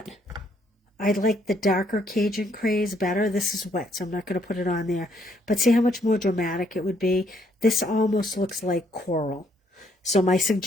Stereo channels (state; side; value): normal; both; correlation 0.70